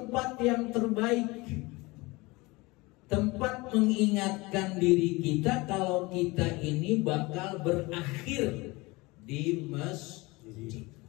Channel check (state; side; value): quieter; right; 23.4 dB